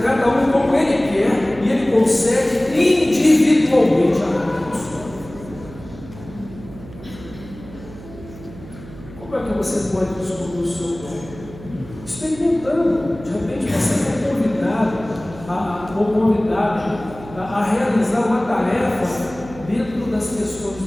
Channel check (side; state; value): right; noise; hum, 17 dB below the sound